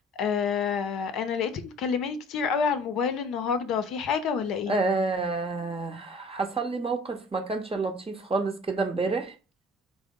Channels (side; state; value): both; normal; correlation 0.49